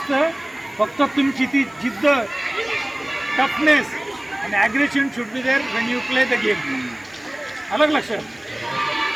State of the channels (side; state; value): left; noise; hiss, 30 dB below the sound